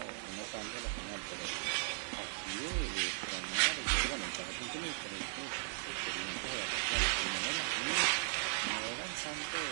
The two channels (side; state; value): left; silent; digital silence